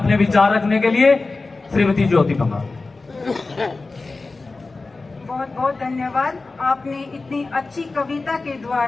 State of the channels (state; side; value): quieter; right; 3.6 dB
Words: विचार रखने के लिए। श्रीमती ज्योति पंघाल। बहुत बहुत धन्यवाद। आपने इतनी अच्छी कविता के